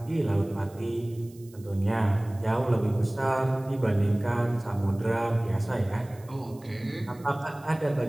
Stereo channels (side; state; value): right; noise; hiss, 26 dB below the sound